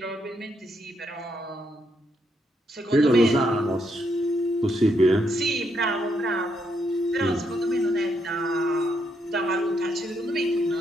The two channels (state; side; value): normal; both; correlation 0.77